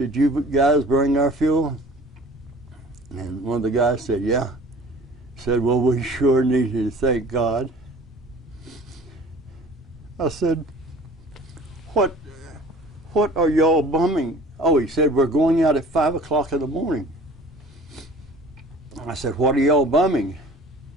you guys bring our fuel?" And one of the guys said, "Yeah." Said, "Well, we sure need to thank God." I said, What are y'all bumming?" "Oh," he said, "we're going out at 5 o'clock in the morning." I said, "What are y'all bumming?"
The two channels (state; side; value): normal; both; correlation 0.47